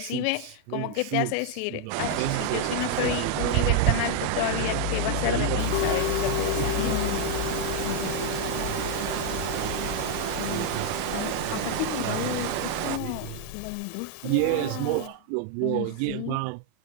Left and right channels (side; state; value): both; different; correlation 0.00